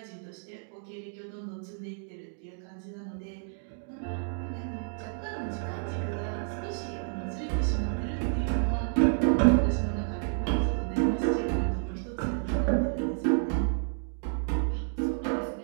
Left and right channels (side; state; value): left; silent; digital silence